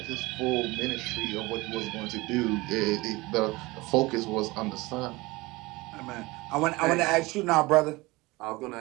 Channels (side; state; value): left; quieter; 22.1 dB